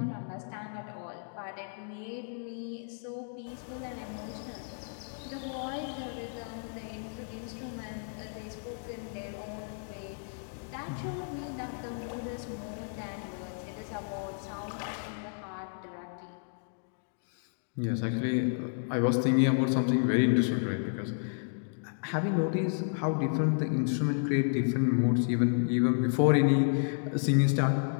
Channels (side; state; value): right; silent; digital silence